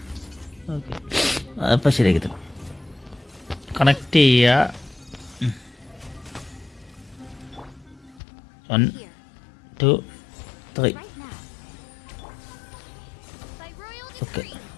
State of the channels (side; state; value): right; drops out; at 8.2 s